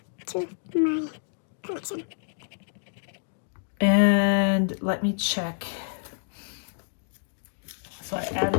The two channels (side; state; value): right; silent; digital silence